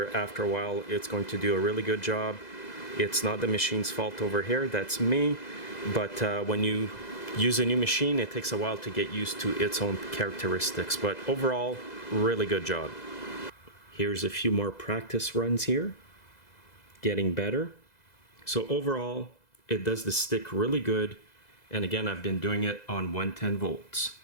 after a while it's going to do a really good job. It's not the machine's fault over here, that's me. But when you use a new machine, it takes a while to get used to its own characteristics. But overall, really good job. Here's a few more practice runs here. Getting better. So overall, it does the stick really good. And again, I've been doing it on 110 volts.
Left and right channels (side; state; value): right; late; 2.0 ms